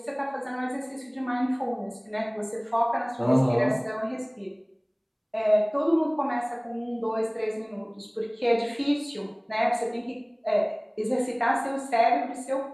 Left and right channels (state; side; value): identical; both; correlation 1.00